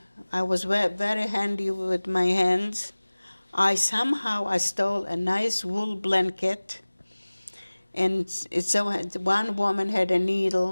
was very handy with my hands. I stole a nice wool blanket. And so one woman had a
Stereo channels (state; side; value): inverted; both; correlation -1.00